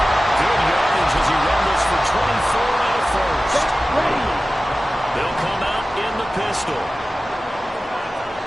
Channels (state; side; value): normal; both; correlation 0.96